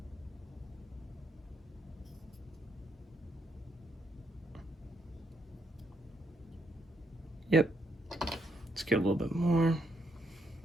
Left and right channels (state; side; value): normal; both; correlation 0.76